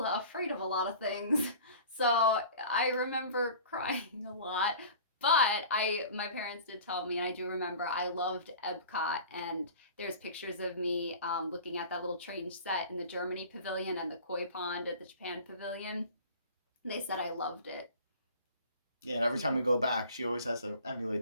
afraid of a lot of things. So I remember crying a lot. But my parents did tell me, and I do remember, I loved Epcot, and there's pictures of me looking at that little train set in the Germany pavilion and the koi pond at the Japan pavilion. They said I loved it. Yeah, and every time we go back, she always has to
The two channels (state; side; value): inverted; both; correlation -0.41